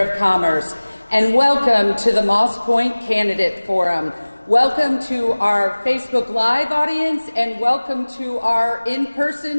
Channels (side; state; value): both; inverted; correlation -1.00